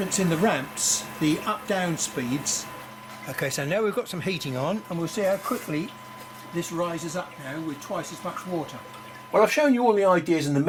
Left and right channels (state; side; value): identical; both; correlation 1.00